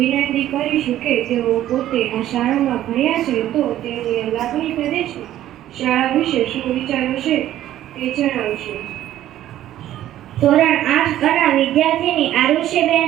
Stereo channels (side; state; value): left; quieter; 12.9 dB